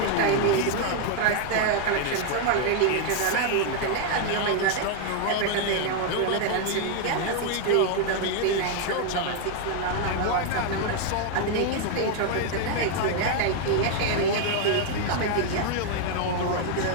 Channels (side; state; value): both; different; correlation 0.00